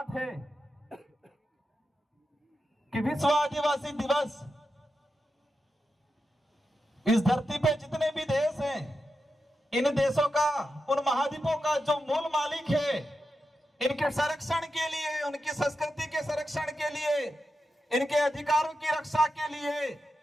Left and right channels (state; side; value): normal; both; correlation 0.89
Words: है कि विश्व आदिवासी दिवस इस धरती पे जितने भी देश हैं, इन देशों का, उन महाद्वीपों का जो मूल मालिक है, इनके संरक्षण के लिए, उनकी संस्कृति के संरक्षण के लिए, इनके अधिकारों की रक्षा के लिए,